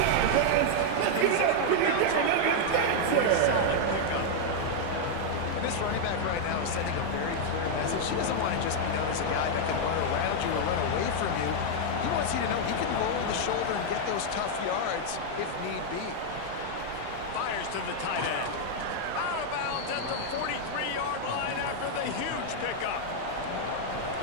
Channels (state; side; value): different; both; correlation 0.00